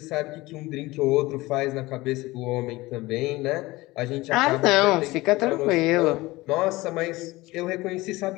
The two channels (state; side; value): quieter; right; 20.3 dB